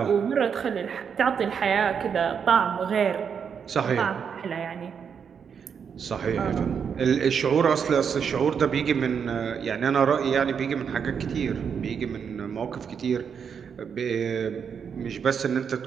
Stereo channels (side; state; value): left; quieter; 7.0 dB